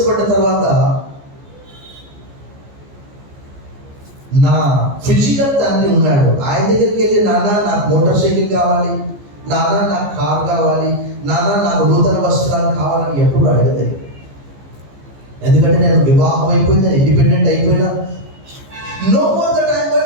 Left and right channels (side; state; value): left; late; 14 ms